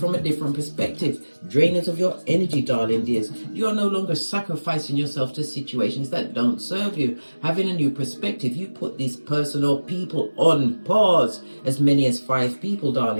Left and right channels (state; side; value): inverted; both; correlation -1.00